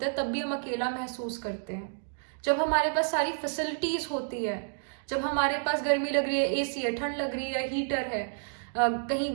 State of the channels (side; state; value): left; silent; digital silence